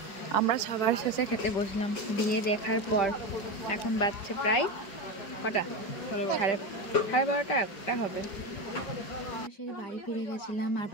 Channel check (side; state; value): right; late; 5.2 ms